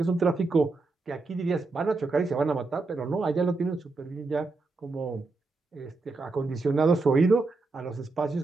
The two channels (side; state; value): left; quieter; 3.6 dB